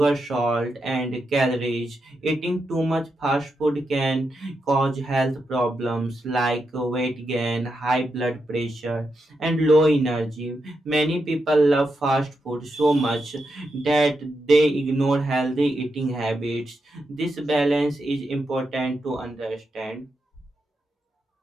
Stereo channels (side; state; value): both; normal; correlation 0.85